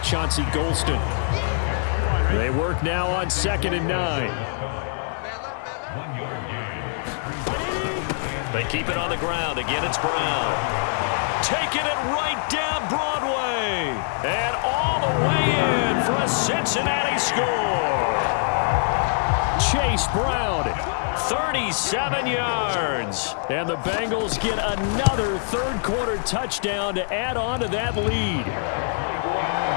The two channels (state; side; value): silent; right; 63 dB below the other